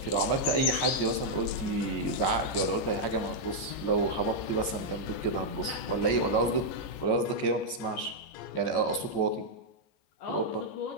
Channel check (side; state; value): right; late; 14 ms